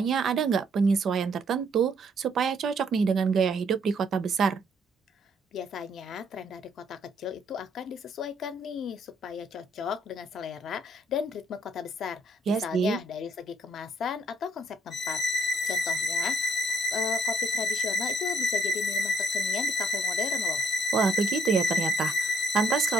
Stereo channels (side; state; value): both; normal; correlation 0.68